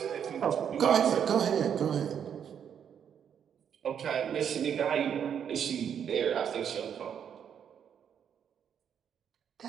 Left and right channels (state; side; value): quieter; left; 8.3 dB